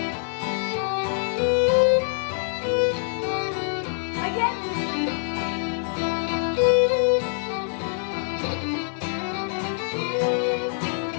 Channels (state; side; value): silent; right; digital silence